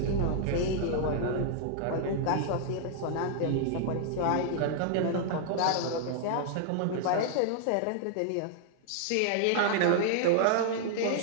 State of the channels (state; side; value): different; both; correlation -0.01